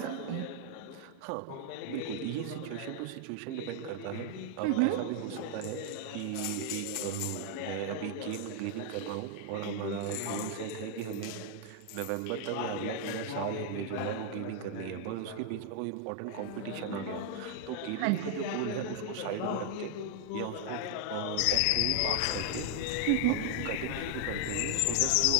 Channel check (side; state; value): both; different; correlation 0.00